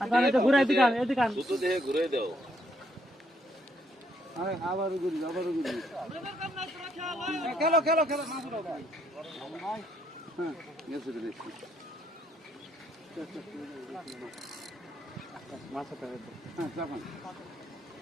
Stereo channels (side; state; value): both; normal; correlation 0.72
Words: আরে এটা ঘুরাই দিকান এদিকান দুটো দেহে ঘুরাই দাও আরে আবারও ঘুরি খেলো খেলো খেলো না শুনো ভাই হ্যাঁ গেছে দিছি মাছটা হ্যাঁ যাবেন